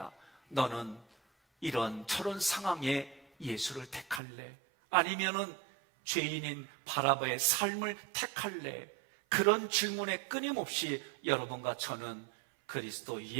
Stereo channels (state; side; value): drops out; left; at 4.2 s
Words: 너는 이런 저런 상황에 예수를 택할래? 아니면은 죄인인 바라바의 삶을 택할래? 그런 질문에 끊임없이 여러분과 저는 그리스도